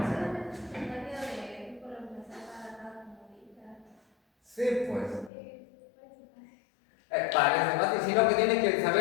Sí, pues. Parece fácil, sino que tienes que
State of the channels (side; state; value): right; drops out; at 5.3 s